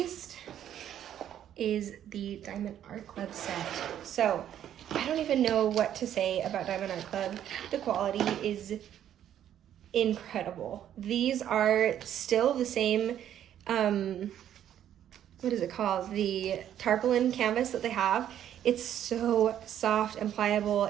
is the Diamond Art Club set. So I don't even know what to say about Diamond Art Club. The quality is incredible. These are still the same, what is it called? The tarpaulin canvas that they have. It's so soft and pliable.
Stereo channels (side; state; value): left; quieter; 10.6 dB